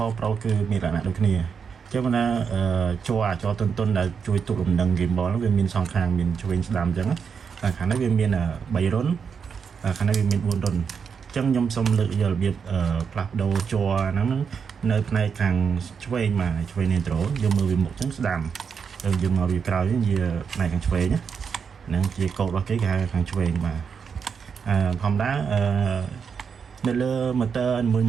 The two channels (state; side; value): quieter; left; 6.4 dB